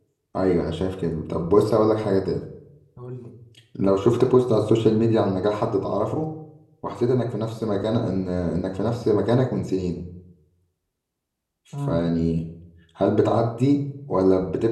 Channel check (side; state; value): both; identical; correlation 1.00